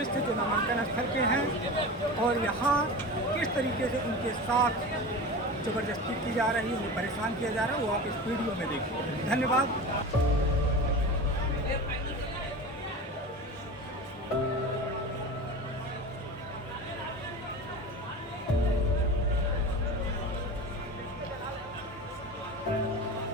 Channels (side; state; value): both; normal; correlation 0.30